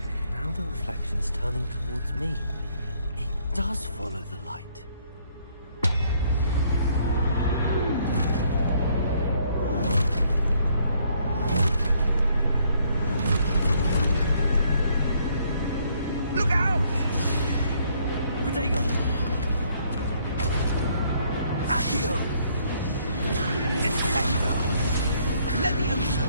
Now the reflection's turning towards me. It does follow the light. Look out! Protego! Accio! Descendo! Levioso!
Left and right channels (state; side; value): inverted; both; correlation -0.67